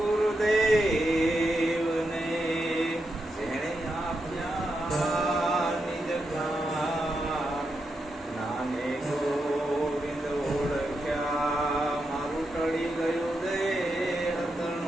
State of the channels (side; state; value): both; normal; correlation 0.85